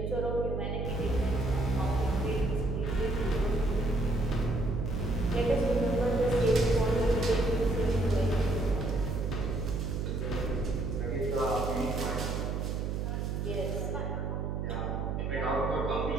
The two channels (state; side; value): noise; right; hum, 1 dB below the sound